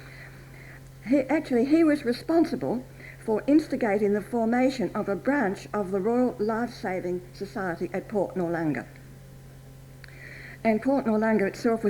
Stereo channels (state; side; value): identical; both; correlation 1.00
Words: He was responsible for instigating the formation of a branch of the Royal Life-Saving Society at Port Noarlunga. And Port Noarlunga itself